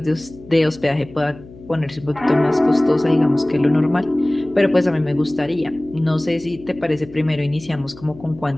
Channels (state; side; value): noise; left; hum, 20 dB below the sound